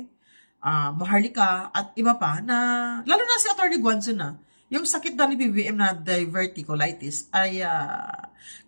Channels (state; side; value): inverted; both; correlation -1.00